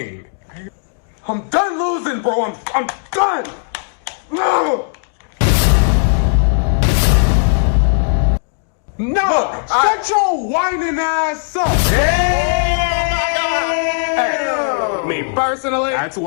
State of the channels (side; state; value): right; silent; digital silence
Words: I'm done losing, bro. I'm done. No. No, shut your whining ass up. Me personally, That's